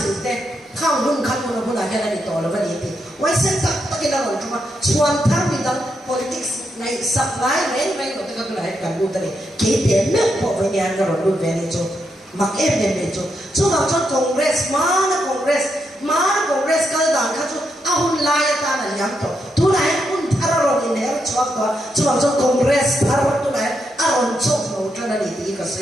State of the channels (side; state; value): both; normal; correlation 0.81